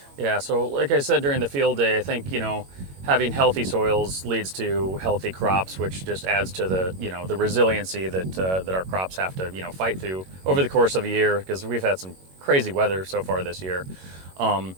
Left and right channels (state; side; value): late; left; 21 ms